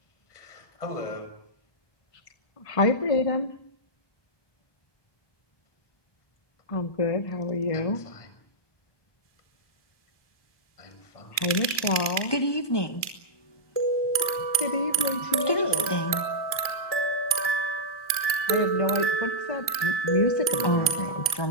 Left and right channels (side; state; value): right; late; 1.2 ms